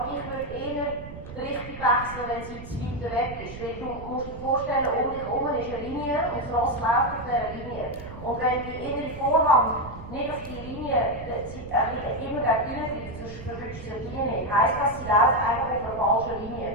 ich würde eher die Richtung wechseln, wenn sie zu weit weg ist. Weil du musst dir vorstellen, um dich herum ist eine Linie und das Ross läuft auf dieser Linie. Und wenn die innere Vorhand nicht auf die Linie immer gegen innen greift, sonst verwünscht sie die Linie nicht. Heisst das, sie läuft einfach auf einer falschen Linie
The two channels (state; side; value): noise; right; rumble, 13 dB below the sound